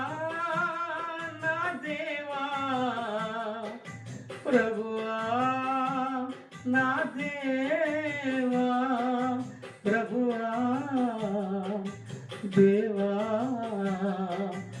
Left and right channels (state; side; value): identical; both; correlation 1.00